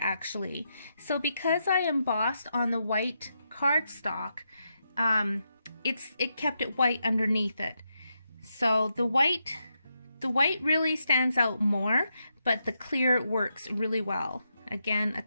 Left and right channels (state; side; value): inverted; both; correlation -0.84